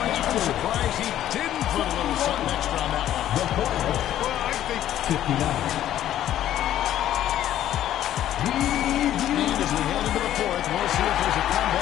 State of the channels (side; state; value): right; quieter; 12.1 dB